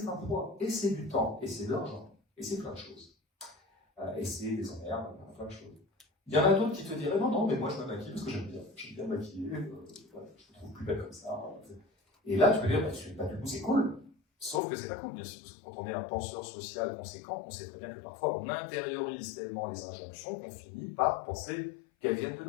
un poids, et c'est du temps, et c'est de l'argent, et c'est plein de choses. Et c'est des emmerdes, plein de choses. Il y en a d'autres qui te diraient non, non, mais moi je me maquille parce que j'aime bien me maquiller, voilà, je me trouve plus belle comme ça. Et là, tu peux dire, bah, du coup, c'est cool. Sauf que c'est pas cool, bien sûr, parce que quand on est un penseur social conséquent, on sait très bien que parfois on intériorise tellement les injonctions qu'on finit par penser qu'elles viennent de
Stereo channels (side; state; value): right; drops out; at 14.6 s